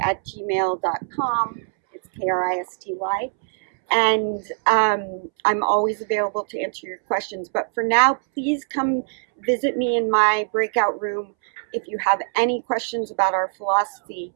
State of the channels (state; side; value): silent; left; 64 dB below the other